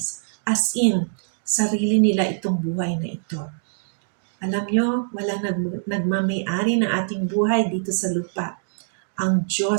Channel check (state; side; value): silent; left; digital silence